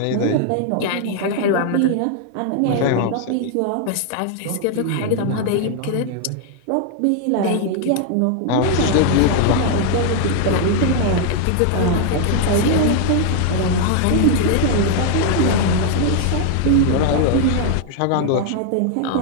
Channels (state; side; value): different; both; correlation 0.00